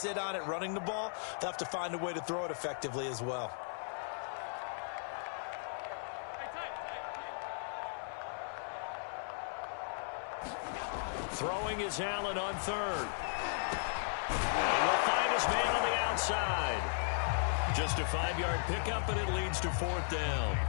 sit on it running the ball. They'll have to find a way to throw it effectively as well. Throwing is Allen on 3rd. And he will find his man on the outside. Just a 5-yard pickup, and it leads to 4th down.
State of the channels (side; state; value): right; silent; digital silence